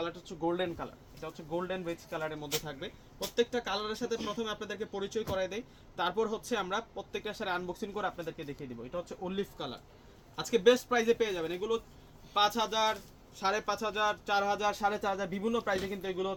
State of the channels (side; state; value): both; identical; correlation 1.00